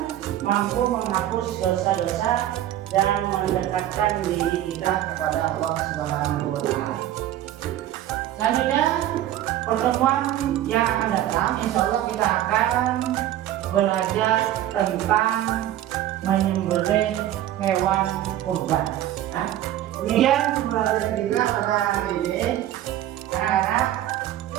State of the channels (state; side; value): quieter; left; 12.8 dB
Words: mampu menghapus dosa-dosa dan mendekatkan diri kita kepada Allah Subhanahu wa Ta'ala. Selanjutnya, pertemuan yang akan datang, insya Allah kita akan belajar tentang menyembelih hewan kurban. Kemudian pembelajaran kita pada hari ini, anak-anak,